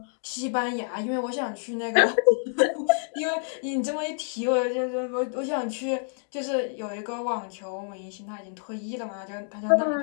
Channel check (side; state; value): right; silent; digital silence